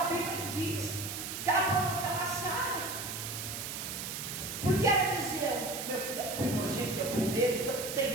Bíblia diz que ela provocava Sara. Porque ela dizia: meu filho é primogênito, é o primeiro, então não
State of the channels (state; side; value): noise; right; hiss, 6 dB below the sound